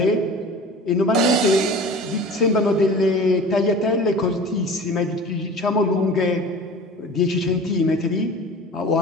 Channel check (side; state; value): both; normal; correlation 0.39